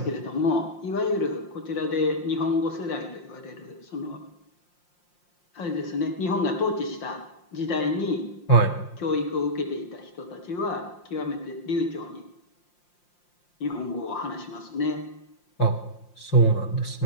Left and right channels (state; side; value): late; right; 5.7 ms